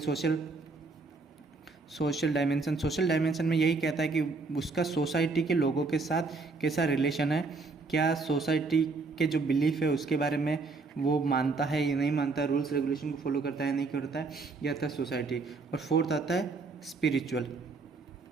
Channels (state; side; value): quieter; left; 4.0 dB